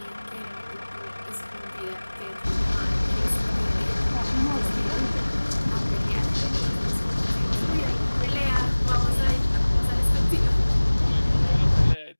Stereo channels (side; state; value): both; inverted; correlation -1.00